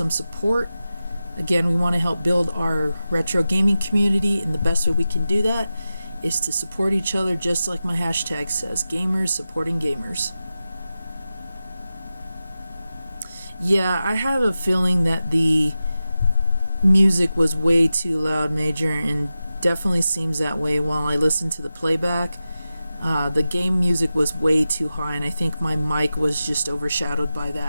support. Again, we want to help build our retro gaming community, and the best way we can do that is to support each other, just like my hashtag says, gamers supporting gamers. Yeah, I have a feeling that the music was way too loud, Major, and definitely seems that way while I listen to the playback. The game music was way too high, and I think my mic was just overshadowed by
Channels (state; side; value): inverted; both; correlation -0.93